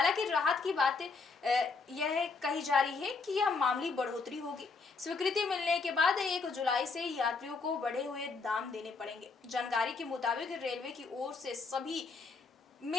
राहत की बात यह कही जा रही है कि यह मामूली बढ़ोतरी होगी। स्वीकृति मिलने के बाद 1 जुलाई से यात्रियों को बढ़े हुए दाम देने पड़ेंगे। जानकारी के मुताबिक रेलवे की ओर से सभी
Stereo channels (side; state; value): right; quieter; 4.4 dB